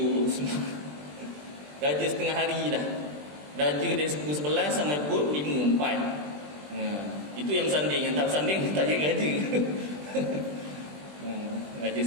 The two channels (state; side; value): late; left; 20 ms